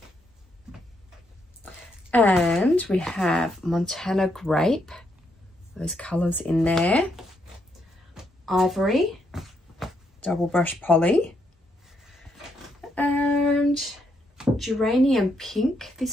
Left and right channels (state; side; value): normal; both; correlation 0.77